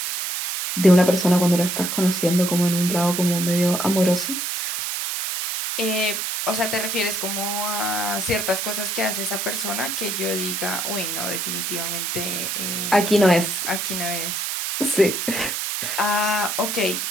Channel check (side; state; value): right; noise; hiss, 2 dB below the sound